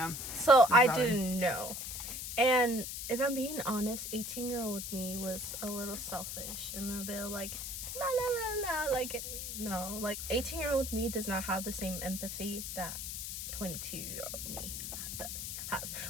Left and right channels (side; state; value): left; noise; hiss, 5 dB below the sound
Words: So I didn't know. And if I'm being honest, 18-year-old me was a little selfish and a bit like, la la la la. Like, no. Like, 18-year-old me does not have the same empathy that 22-year-old me has.